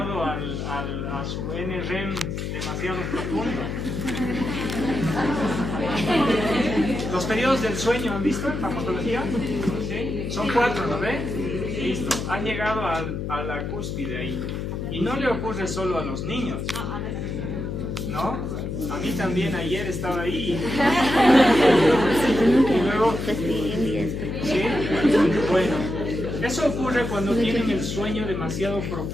a su NREM demasiado profundo. Los periodos del sueño, ¿han visto en farmacología? ¿Sí? Son 4, ¿no ve? Listo, han llegado a la cúspide ahí. Y no le ocurre solo a los niños, ¿no? A mí también ayer estaba ahí. Y luego, ¿sí? Bueno, eso ocurre cuando tienen el sueño demasiado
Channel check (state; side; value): noise; left; hum, 4 dB below the sound